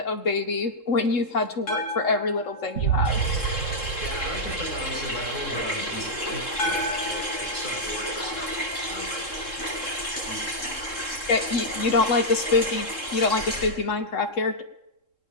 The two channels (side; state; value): right; late; 3.7 ms